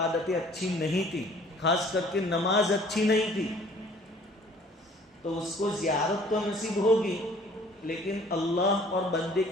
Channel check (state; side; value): normal; both; correlation 0.54